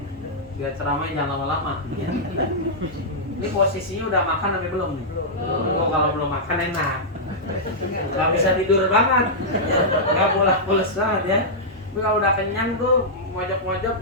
Biar ceramahnya jangan lama-lama, ya. Ini posisinya udah makan tapi belum nih? Oh, kalau belum makan enak. Gak bisa tidur banget, ya. Gak pulas banget, ya. Tapi kalau udah kenyang tuh mojok-mojok,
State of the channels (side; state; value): both; normal; correlation -0.10